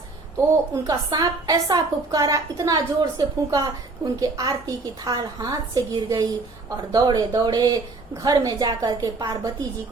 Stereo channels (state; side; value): quieter; left; 3.5 dB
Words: तो उनका सांप ऐसा फुफकारा, इतना जोर से फूंका कि उनके आरती की थाल हाथ से गिर गई और दौड़े दौड़े घर में जाकर के पार्वती जी